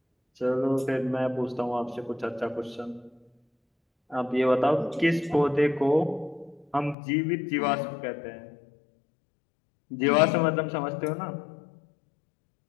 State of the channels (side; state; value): right; drops out; at 7.0 s